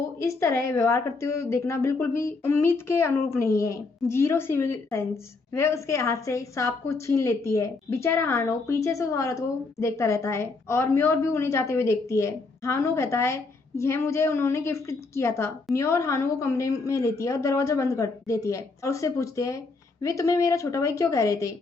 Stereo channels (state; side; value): quieter; right; 3.9 dB